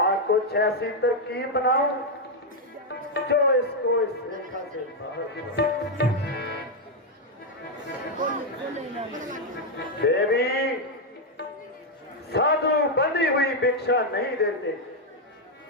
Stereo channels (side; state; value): both; normal; correlation 0.01